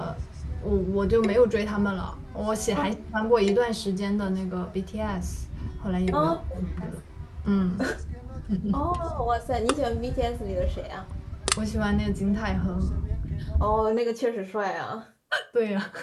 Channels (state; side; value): identical; both; correlation 1.00